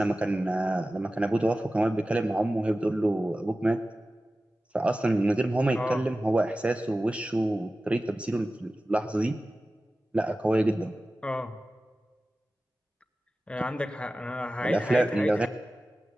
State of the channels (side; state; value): both; normal; correlation 0.95